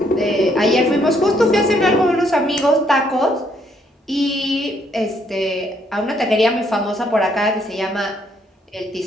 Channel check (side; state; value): both; normal; correlation 0.70